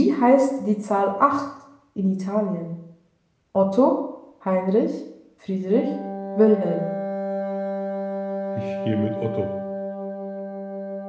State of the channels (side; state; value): both; identical; correlation 1.00